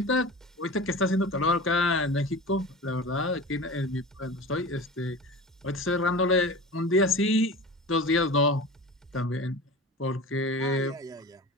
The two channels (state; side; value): normal; both; correlation 0.33